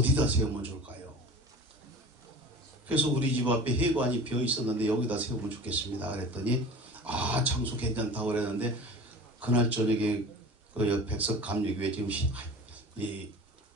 세우면 좋을까요? 그래서 우리 집 앞에 회관이 비어 있었는데 여기다 세우면 좋겠습니다. 그랬더니 아 장소 괜찮다고 그랬는데 그날 저녁에 그 백석 감리교회 지금 이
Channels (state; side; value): normal; both; correlation 0.38